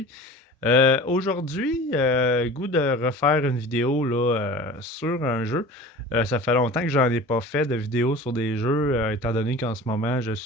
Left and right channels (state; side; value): normal; both; correlation 0.38